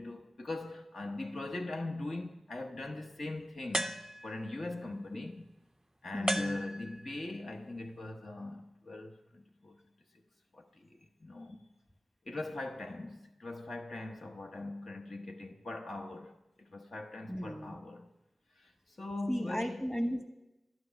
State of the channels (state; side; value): normal; both; correlation 0.94